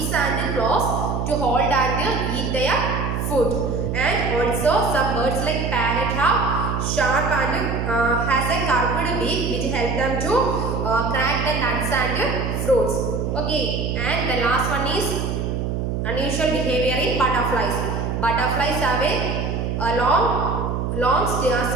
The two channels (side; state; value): right; noise; hum, 1 dB below the sound